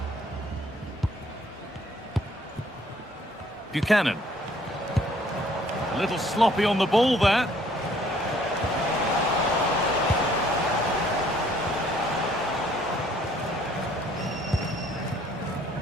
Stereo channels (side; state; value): both; normal; correlation 0.61